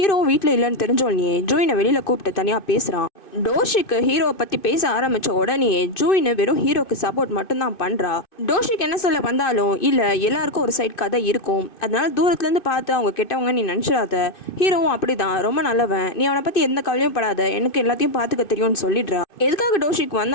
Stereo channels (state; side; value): late; right; 2.6 ms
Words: வீட்டில் இல்லைன்னு தெரிஞ்சோடனே ஜூயினை வெளியில் கூப்பிட்டு தனியாக பேசுகிறான். டோஷிக்கு ஹீரோவை பற்றி பேச ஆரம்பித்த உடனே ஜூயின் வெறும் ஹீரோக்கு சப்போர்ட் மட்டும்தான் பண்ணுறா. டோஷிக்கு என்ன சொல்ல வந்தாலும் இல்லை, எல்லாருக்கும் ஒரு சைட் கதை இருக்கும், அதனால தூரத்துலேருந்து பார்த்து அவங்க கெட்டவங்க நீ நினச்சிடாத, ஹீரோவும் அப்படிதான் ரொம்ப நல்லவன், நீ அவனை பற்றி எந்த கவலையும் படாத, எனக்கு எல்லாத்தையும் பார்த்துக்க தெரியும்னு சொல்லிடுறா. எதுக்காக டோஷிக்கு